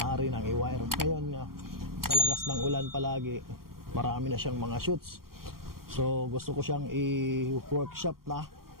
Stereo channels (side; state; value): left; late; 0.93 ms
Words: nang i-wire. Ngayon nga, sa lakas ng ulan palagi, marami na siyang mga shoots. So gusto ko siyang i-workshop na